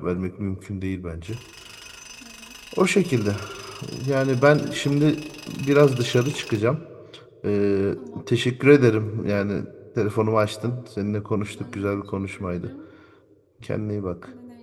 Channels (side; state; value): both; identical; correlation 1.00